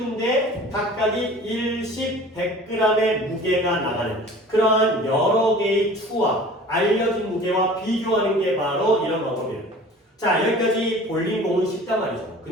각각이 1십 100g의 무게가 나가는 그러한 여러 개의 추와 알려진 무게와 비교하는 게 바로 이런 방법이에요. 자, 여기까지 볼링공은 쉽단 말이죠.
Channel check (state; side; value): normal; both; correlation 0.44